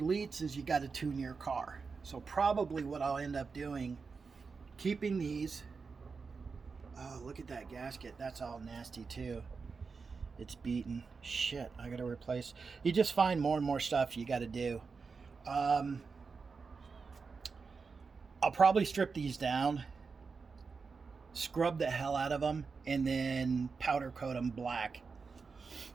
is you got to tune your car. So probably what I'll end up doing, keeping these. Oh, look at that gasket. That's all nasty too. It's beaten. Shit, I got to replace. You just find more and more stuff you got to do. I'll probably strip these down, scrub the hell out of them, and then powder coat them black.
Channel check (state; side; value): quieter; left; 4.9 dB